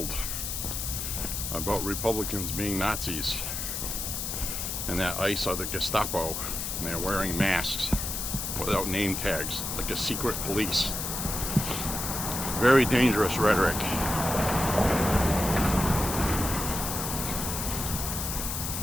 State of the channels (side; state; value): left; noise; hiss, 3 dB below the sound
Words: about Republicans being Nazis and that ICE are the Gestapo and they're wearing masks without name tags like a secret police. Very dangerous rhetoric.